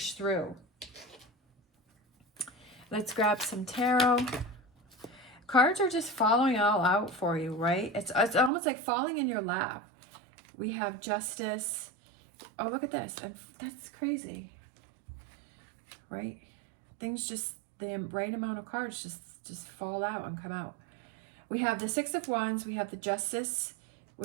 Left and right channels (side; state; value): left; drops out; at 8.5 s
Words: through. Let's grab some tarot. Cards are just falling all out for you, right? It's almost like falling in your lap. We have Justice. Oh, look at this. And that's crazy, right? Things just, the right amount of cards just fall out and come out. We have the Six of Wands, we have the Justice,